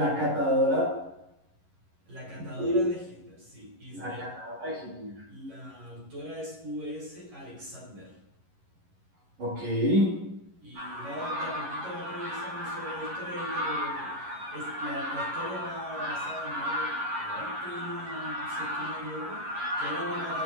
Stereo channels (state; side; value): late; left; 11 ms